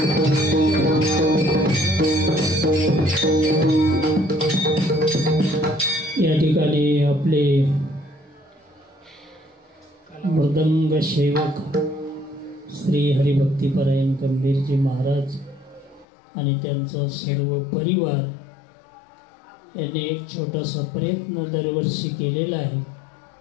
ठिकाणी आपले मृदंग सेवक श्री हरिभक्तीपरायण गंभीरजी महाराज आणि त्यांचा सर्व परिवार यांनी एक छोटासा प्रयत्न दरवर्षी केलेला आहे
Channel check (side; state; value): right; drops out; at 16.1 s